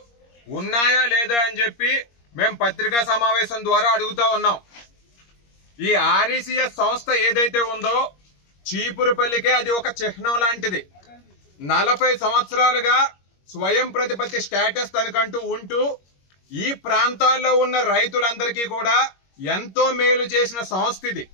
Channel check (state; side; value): late; right; 21 ms